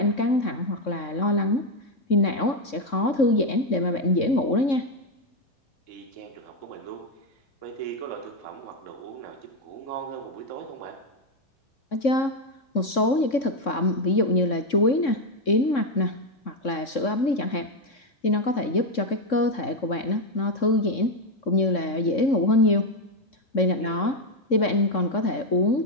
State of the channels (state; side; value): late; right; 3.6 ms